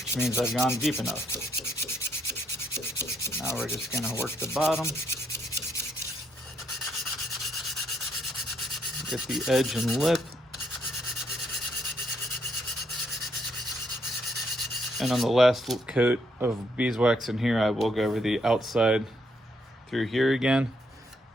means I've gone deep enough. Now we're just gonna work the bottom. Get the edge and lip. And on the last coat of beeswax in here, I will go over the outside through here again.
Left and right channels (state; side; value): normal; both; correlation 0.74